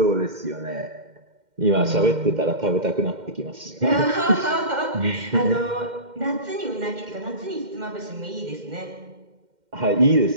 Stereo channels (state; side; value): late; left; 2.1 ms